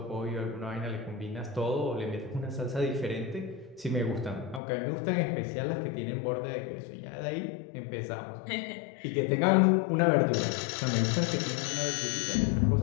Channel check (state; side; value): drops out; right; at 4.6 s